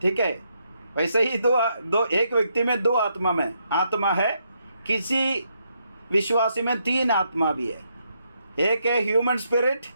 ठीक है, वैसे ही एक व्यक्ति में दो आत्मा है। किसी विश्वासी में तीन आत्मा भी है। एक है ह्यूमन स्पिरिट,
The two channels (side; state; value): both; inverted; correlation -0.78